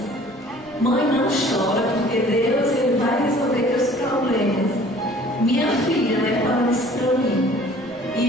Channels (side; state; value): right; noise; rumble, 28 dB below the sound